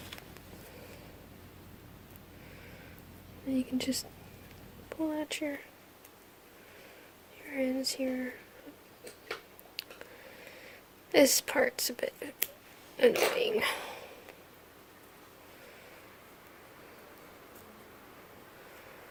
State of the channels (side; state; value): both; identical; correlation 1.00